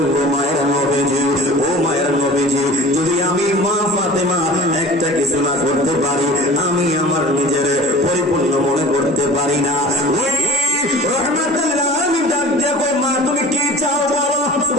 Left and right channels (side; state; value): both; normal; correlation 0.41